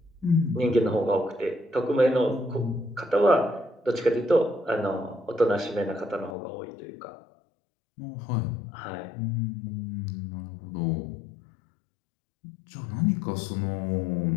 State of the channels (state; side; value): drops out; right; at 6.4 s